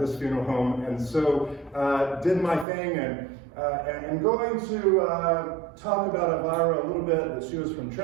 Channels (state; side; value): drops out; left; at 2.7 s